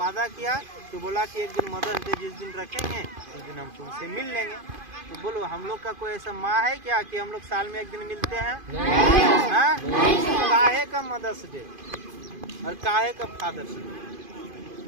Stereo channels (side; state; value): left; late; 2.5 ms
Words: किया, तो बोला कि एक दिन मदर्स डे जिस दिन रखेंगे उस दिन हम तुमसे मिल लेंगे। तो बोलो, हम लोग का कोई ऐसा माँ है क्या कि हम लोग साल में एक दिन मिलते हैं? काहे का मदर्स डे और काहे का फादर्स